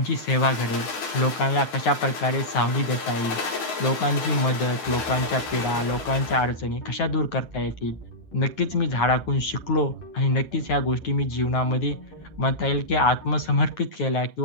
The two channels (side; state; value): right; late; 9.4 ms